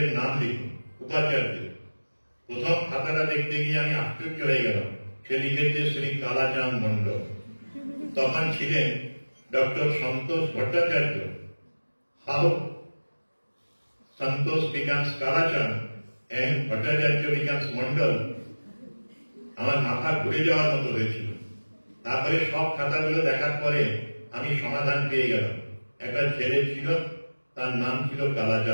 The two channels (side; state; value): both; inverted; correlation -1.00